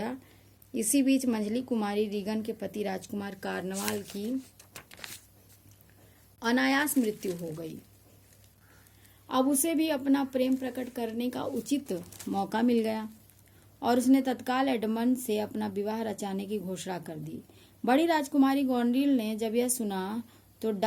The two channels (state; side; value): identical; both; correlation 1.00